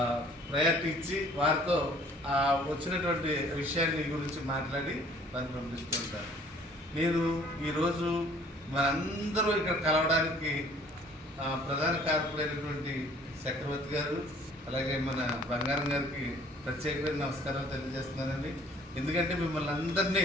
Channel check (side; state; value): both; normal; correlation 0.55